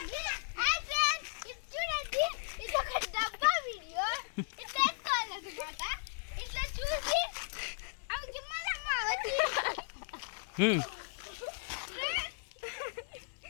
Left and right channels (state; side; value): silent; right; 54 dB below the other